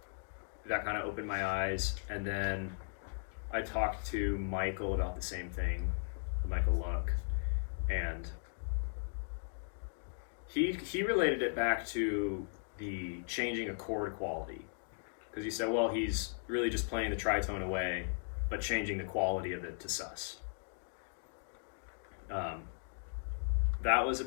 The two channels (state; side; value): silent; right; digital silence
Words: that kind of opened my eyes. And then I talked to Michael about the same thing, Michael Luck, and He related it back to the changing a chord quality, because he said, well, he's really just playing the tritone away, but changing the quality of it to sus. That